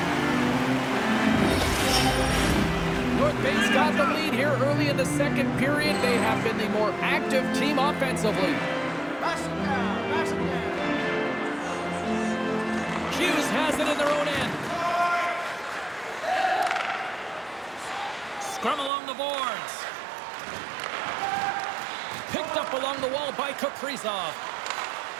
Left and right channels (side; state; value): left; drops out; at 18.9 s